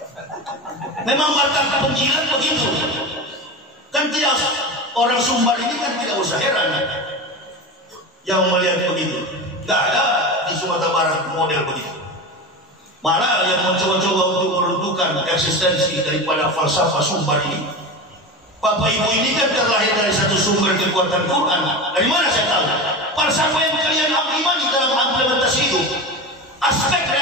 Memang batang penjilat begitu. Kan tidak, orang Sumbar ini kan tidak usah heran yang melihat begitu. Tidak ada di Sumatera Barat model begitu. Malah yang mencoba-coba untuk meruntuhkan eksistensi daripada falsafah Sumbar ini. Bapak ibu ini kan terlahir dari satu sumber kekuatan Quran. Dari mana saya tahu? Falsafah yang kalian imani dalam implementasi hidup, aspek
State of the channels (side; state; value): both; normal; correlation 0.26